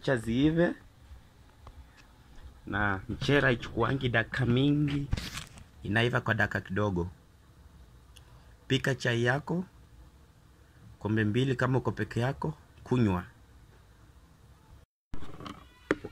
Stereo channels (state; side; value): identical; both; correlation 1.00